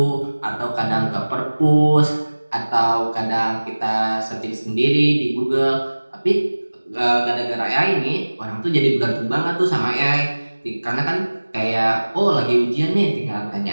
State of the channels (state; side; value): inverted; both; correlation -1.00